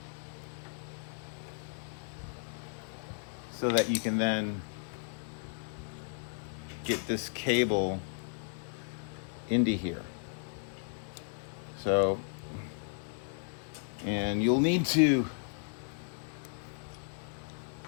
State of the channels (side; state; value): right; silent; digital silence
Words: So that you can then get this cable into here. So, and you'll need to